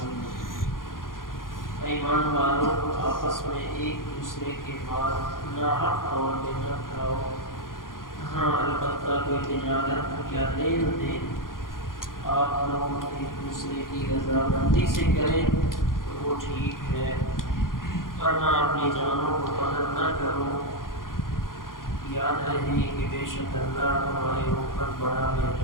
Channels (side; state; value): right; late; 0.90 ms